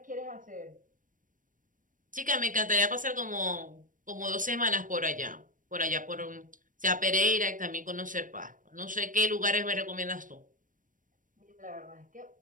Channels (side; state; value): left; late; 0.38 ms